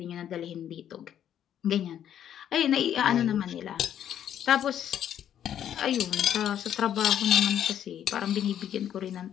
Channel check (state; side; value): quieter; right; 10.1 dB